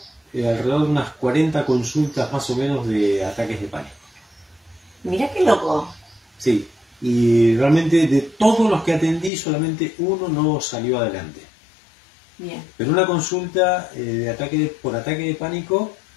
alrededor de unas 40 consultas más o menos de ataques de pánico. Mirá qué loco. Sí. Y realmente de todos los que atendí, solamente uno no salió adelante. Bien. Pero una consulta por ataque de pánico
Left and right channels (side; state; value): right; drops out; at 9.3 s